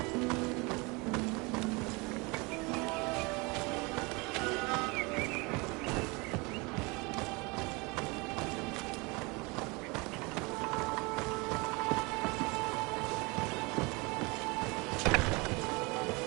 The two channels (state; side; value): quieter; left; 27.1 dB